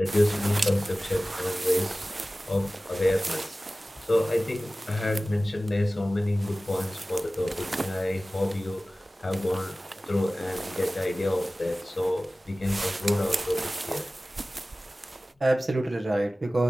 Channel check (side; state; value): both; normal; correlation 0.97